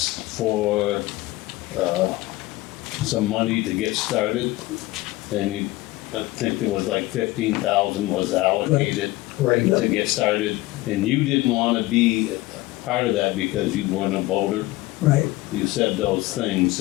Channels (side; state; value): right; quieter; 19.1 dB